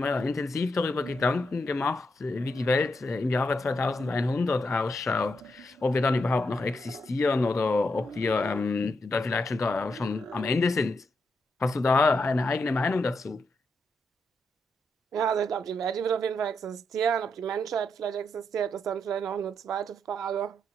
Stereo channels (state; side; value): normal; both; correlation 0.82